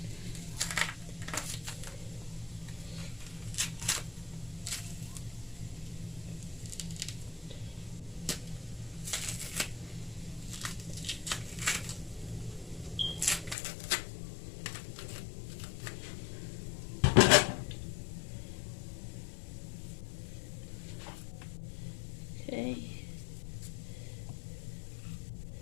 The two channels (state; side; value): drops out; right; at 13.6 s